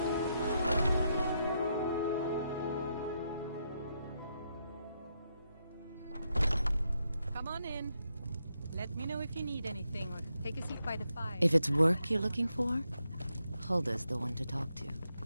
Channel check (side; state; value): both; inverted; correlation -0.81